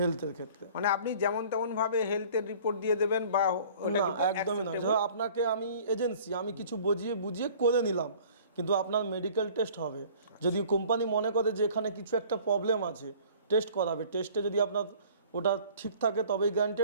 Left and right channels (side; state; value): both; inverted; correlation -0.49